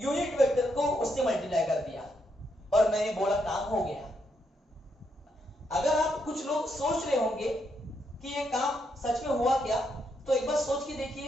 वेक्टर को उससे मल्टीप्लाई कर दिया और मैंने बोला काम हो गया। अगर आप कुछ लोग सोच रहे होंगे कि ये काम सच में हुआ क्या, तो एक बार सोच के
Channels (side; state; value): both; normal; correlation 0.78